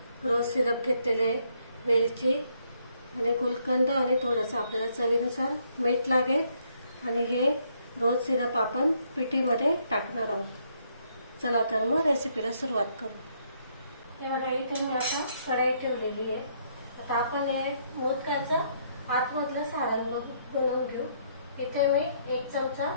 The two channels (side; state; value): both; inverted; correlation -0.71